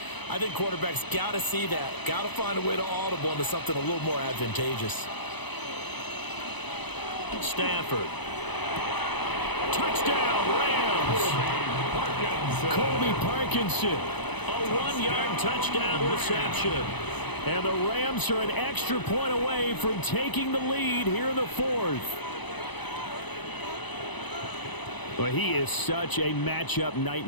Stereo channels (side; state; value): right; late; 1.0 ms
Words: I think quarterbacks got to see that. Got to find a way to audible into something a little more advantageous. Stafford. Touchdown, Rams. Colby Parkinson. A 1-yard touchdown reception. And the Rams are an extra point away from taking the lead here in the 4th. Well, he is such a matchup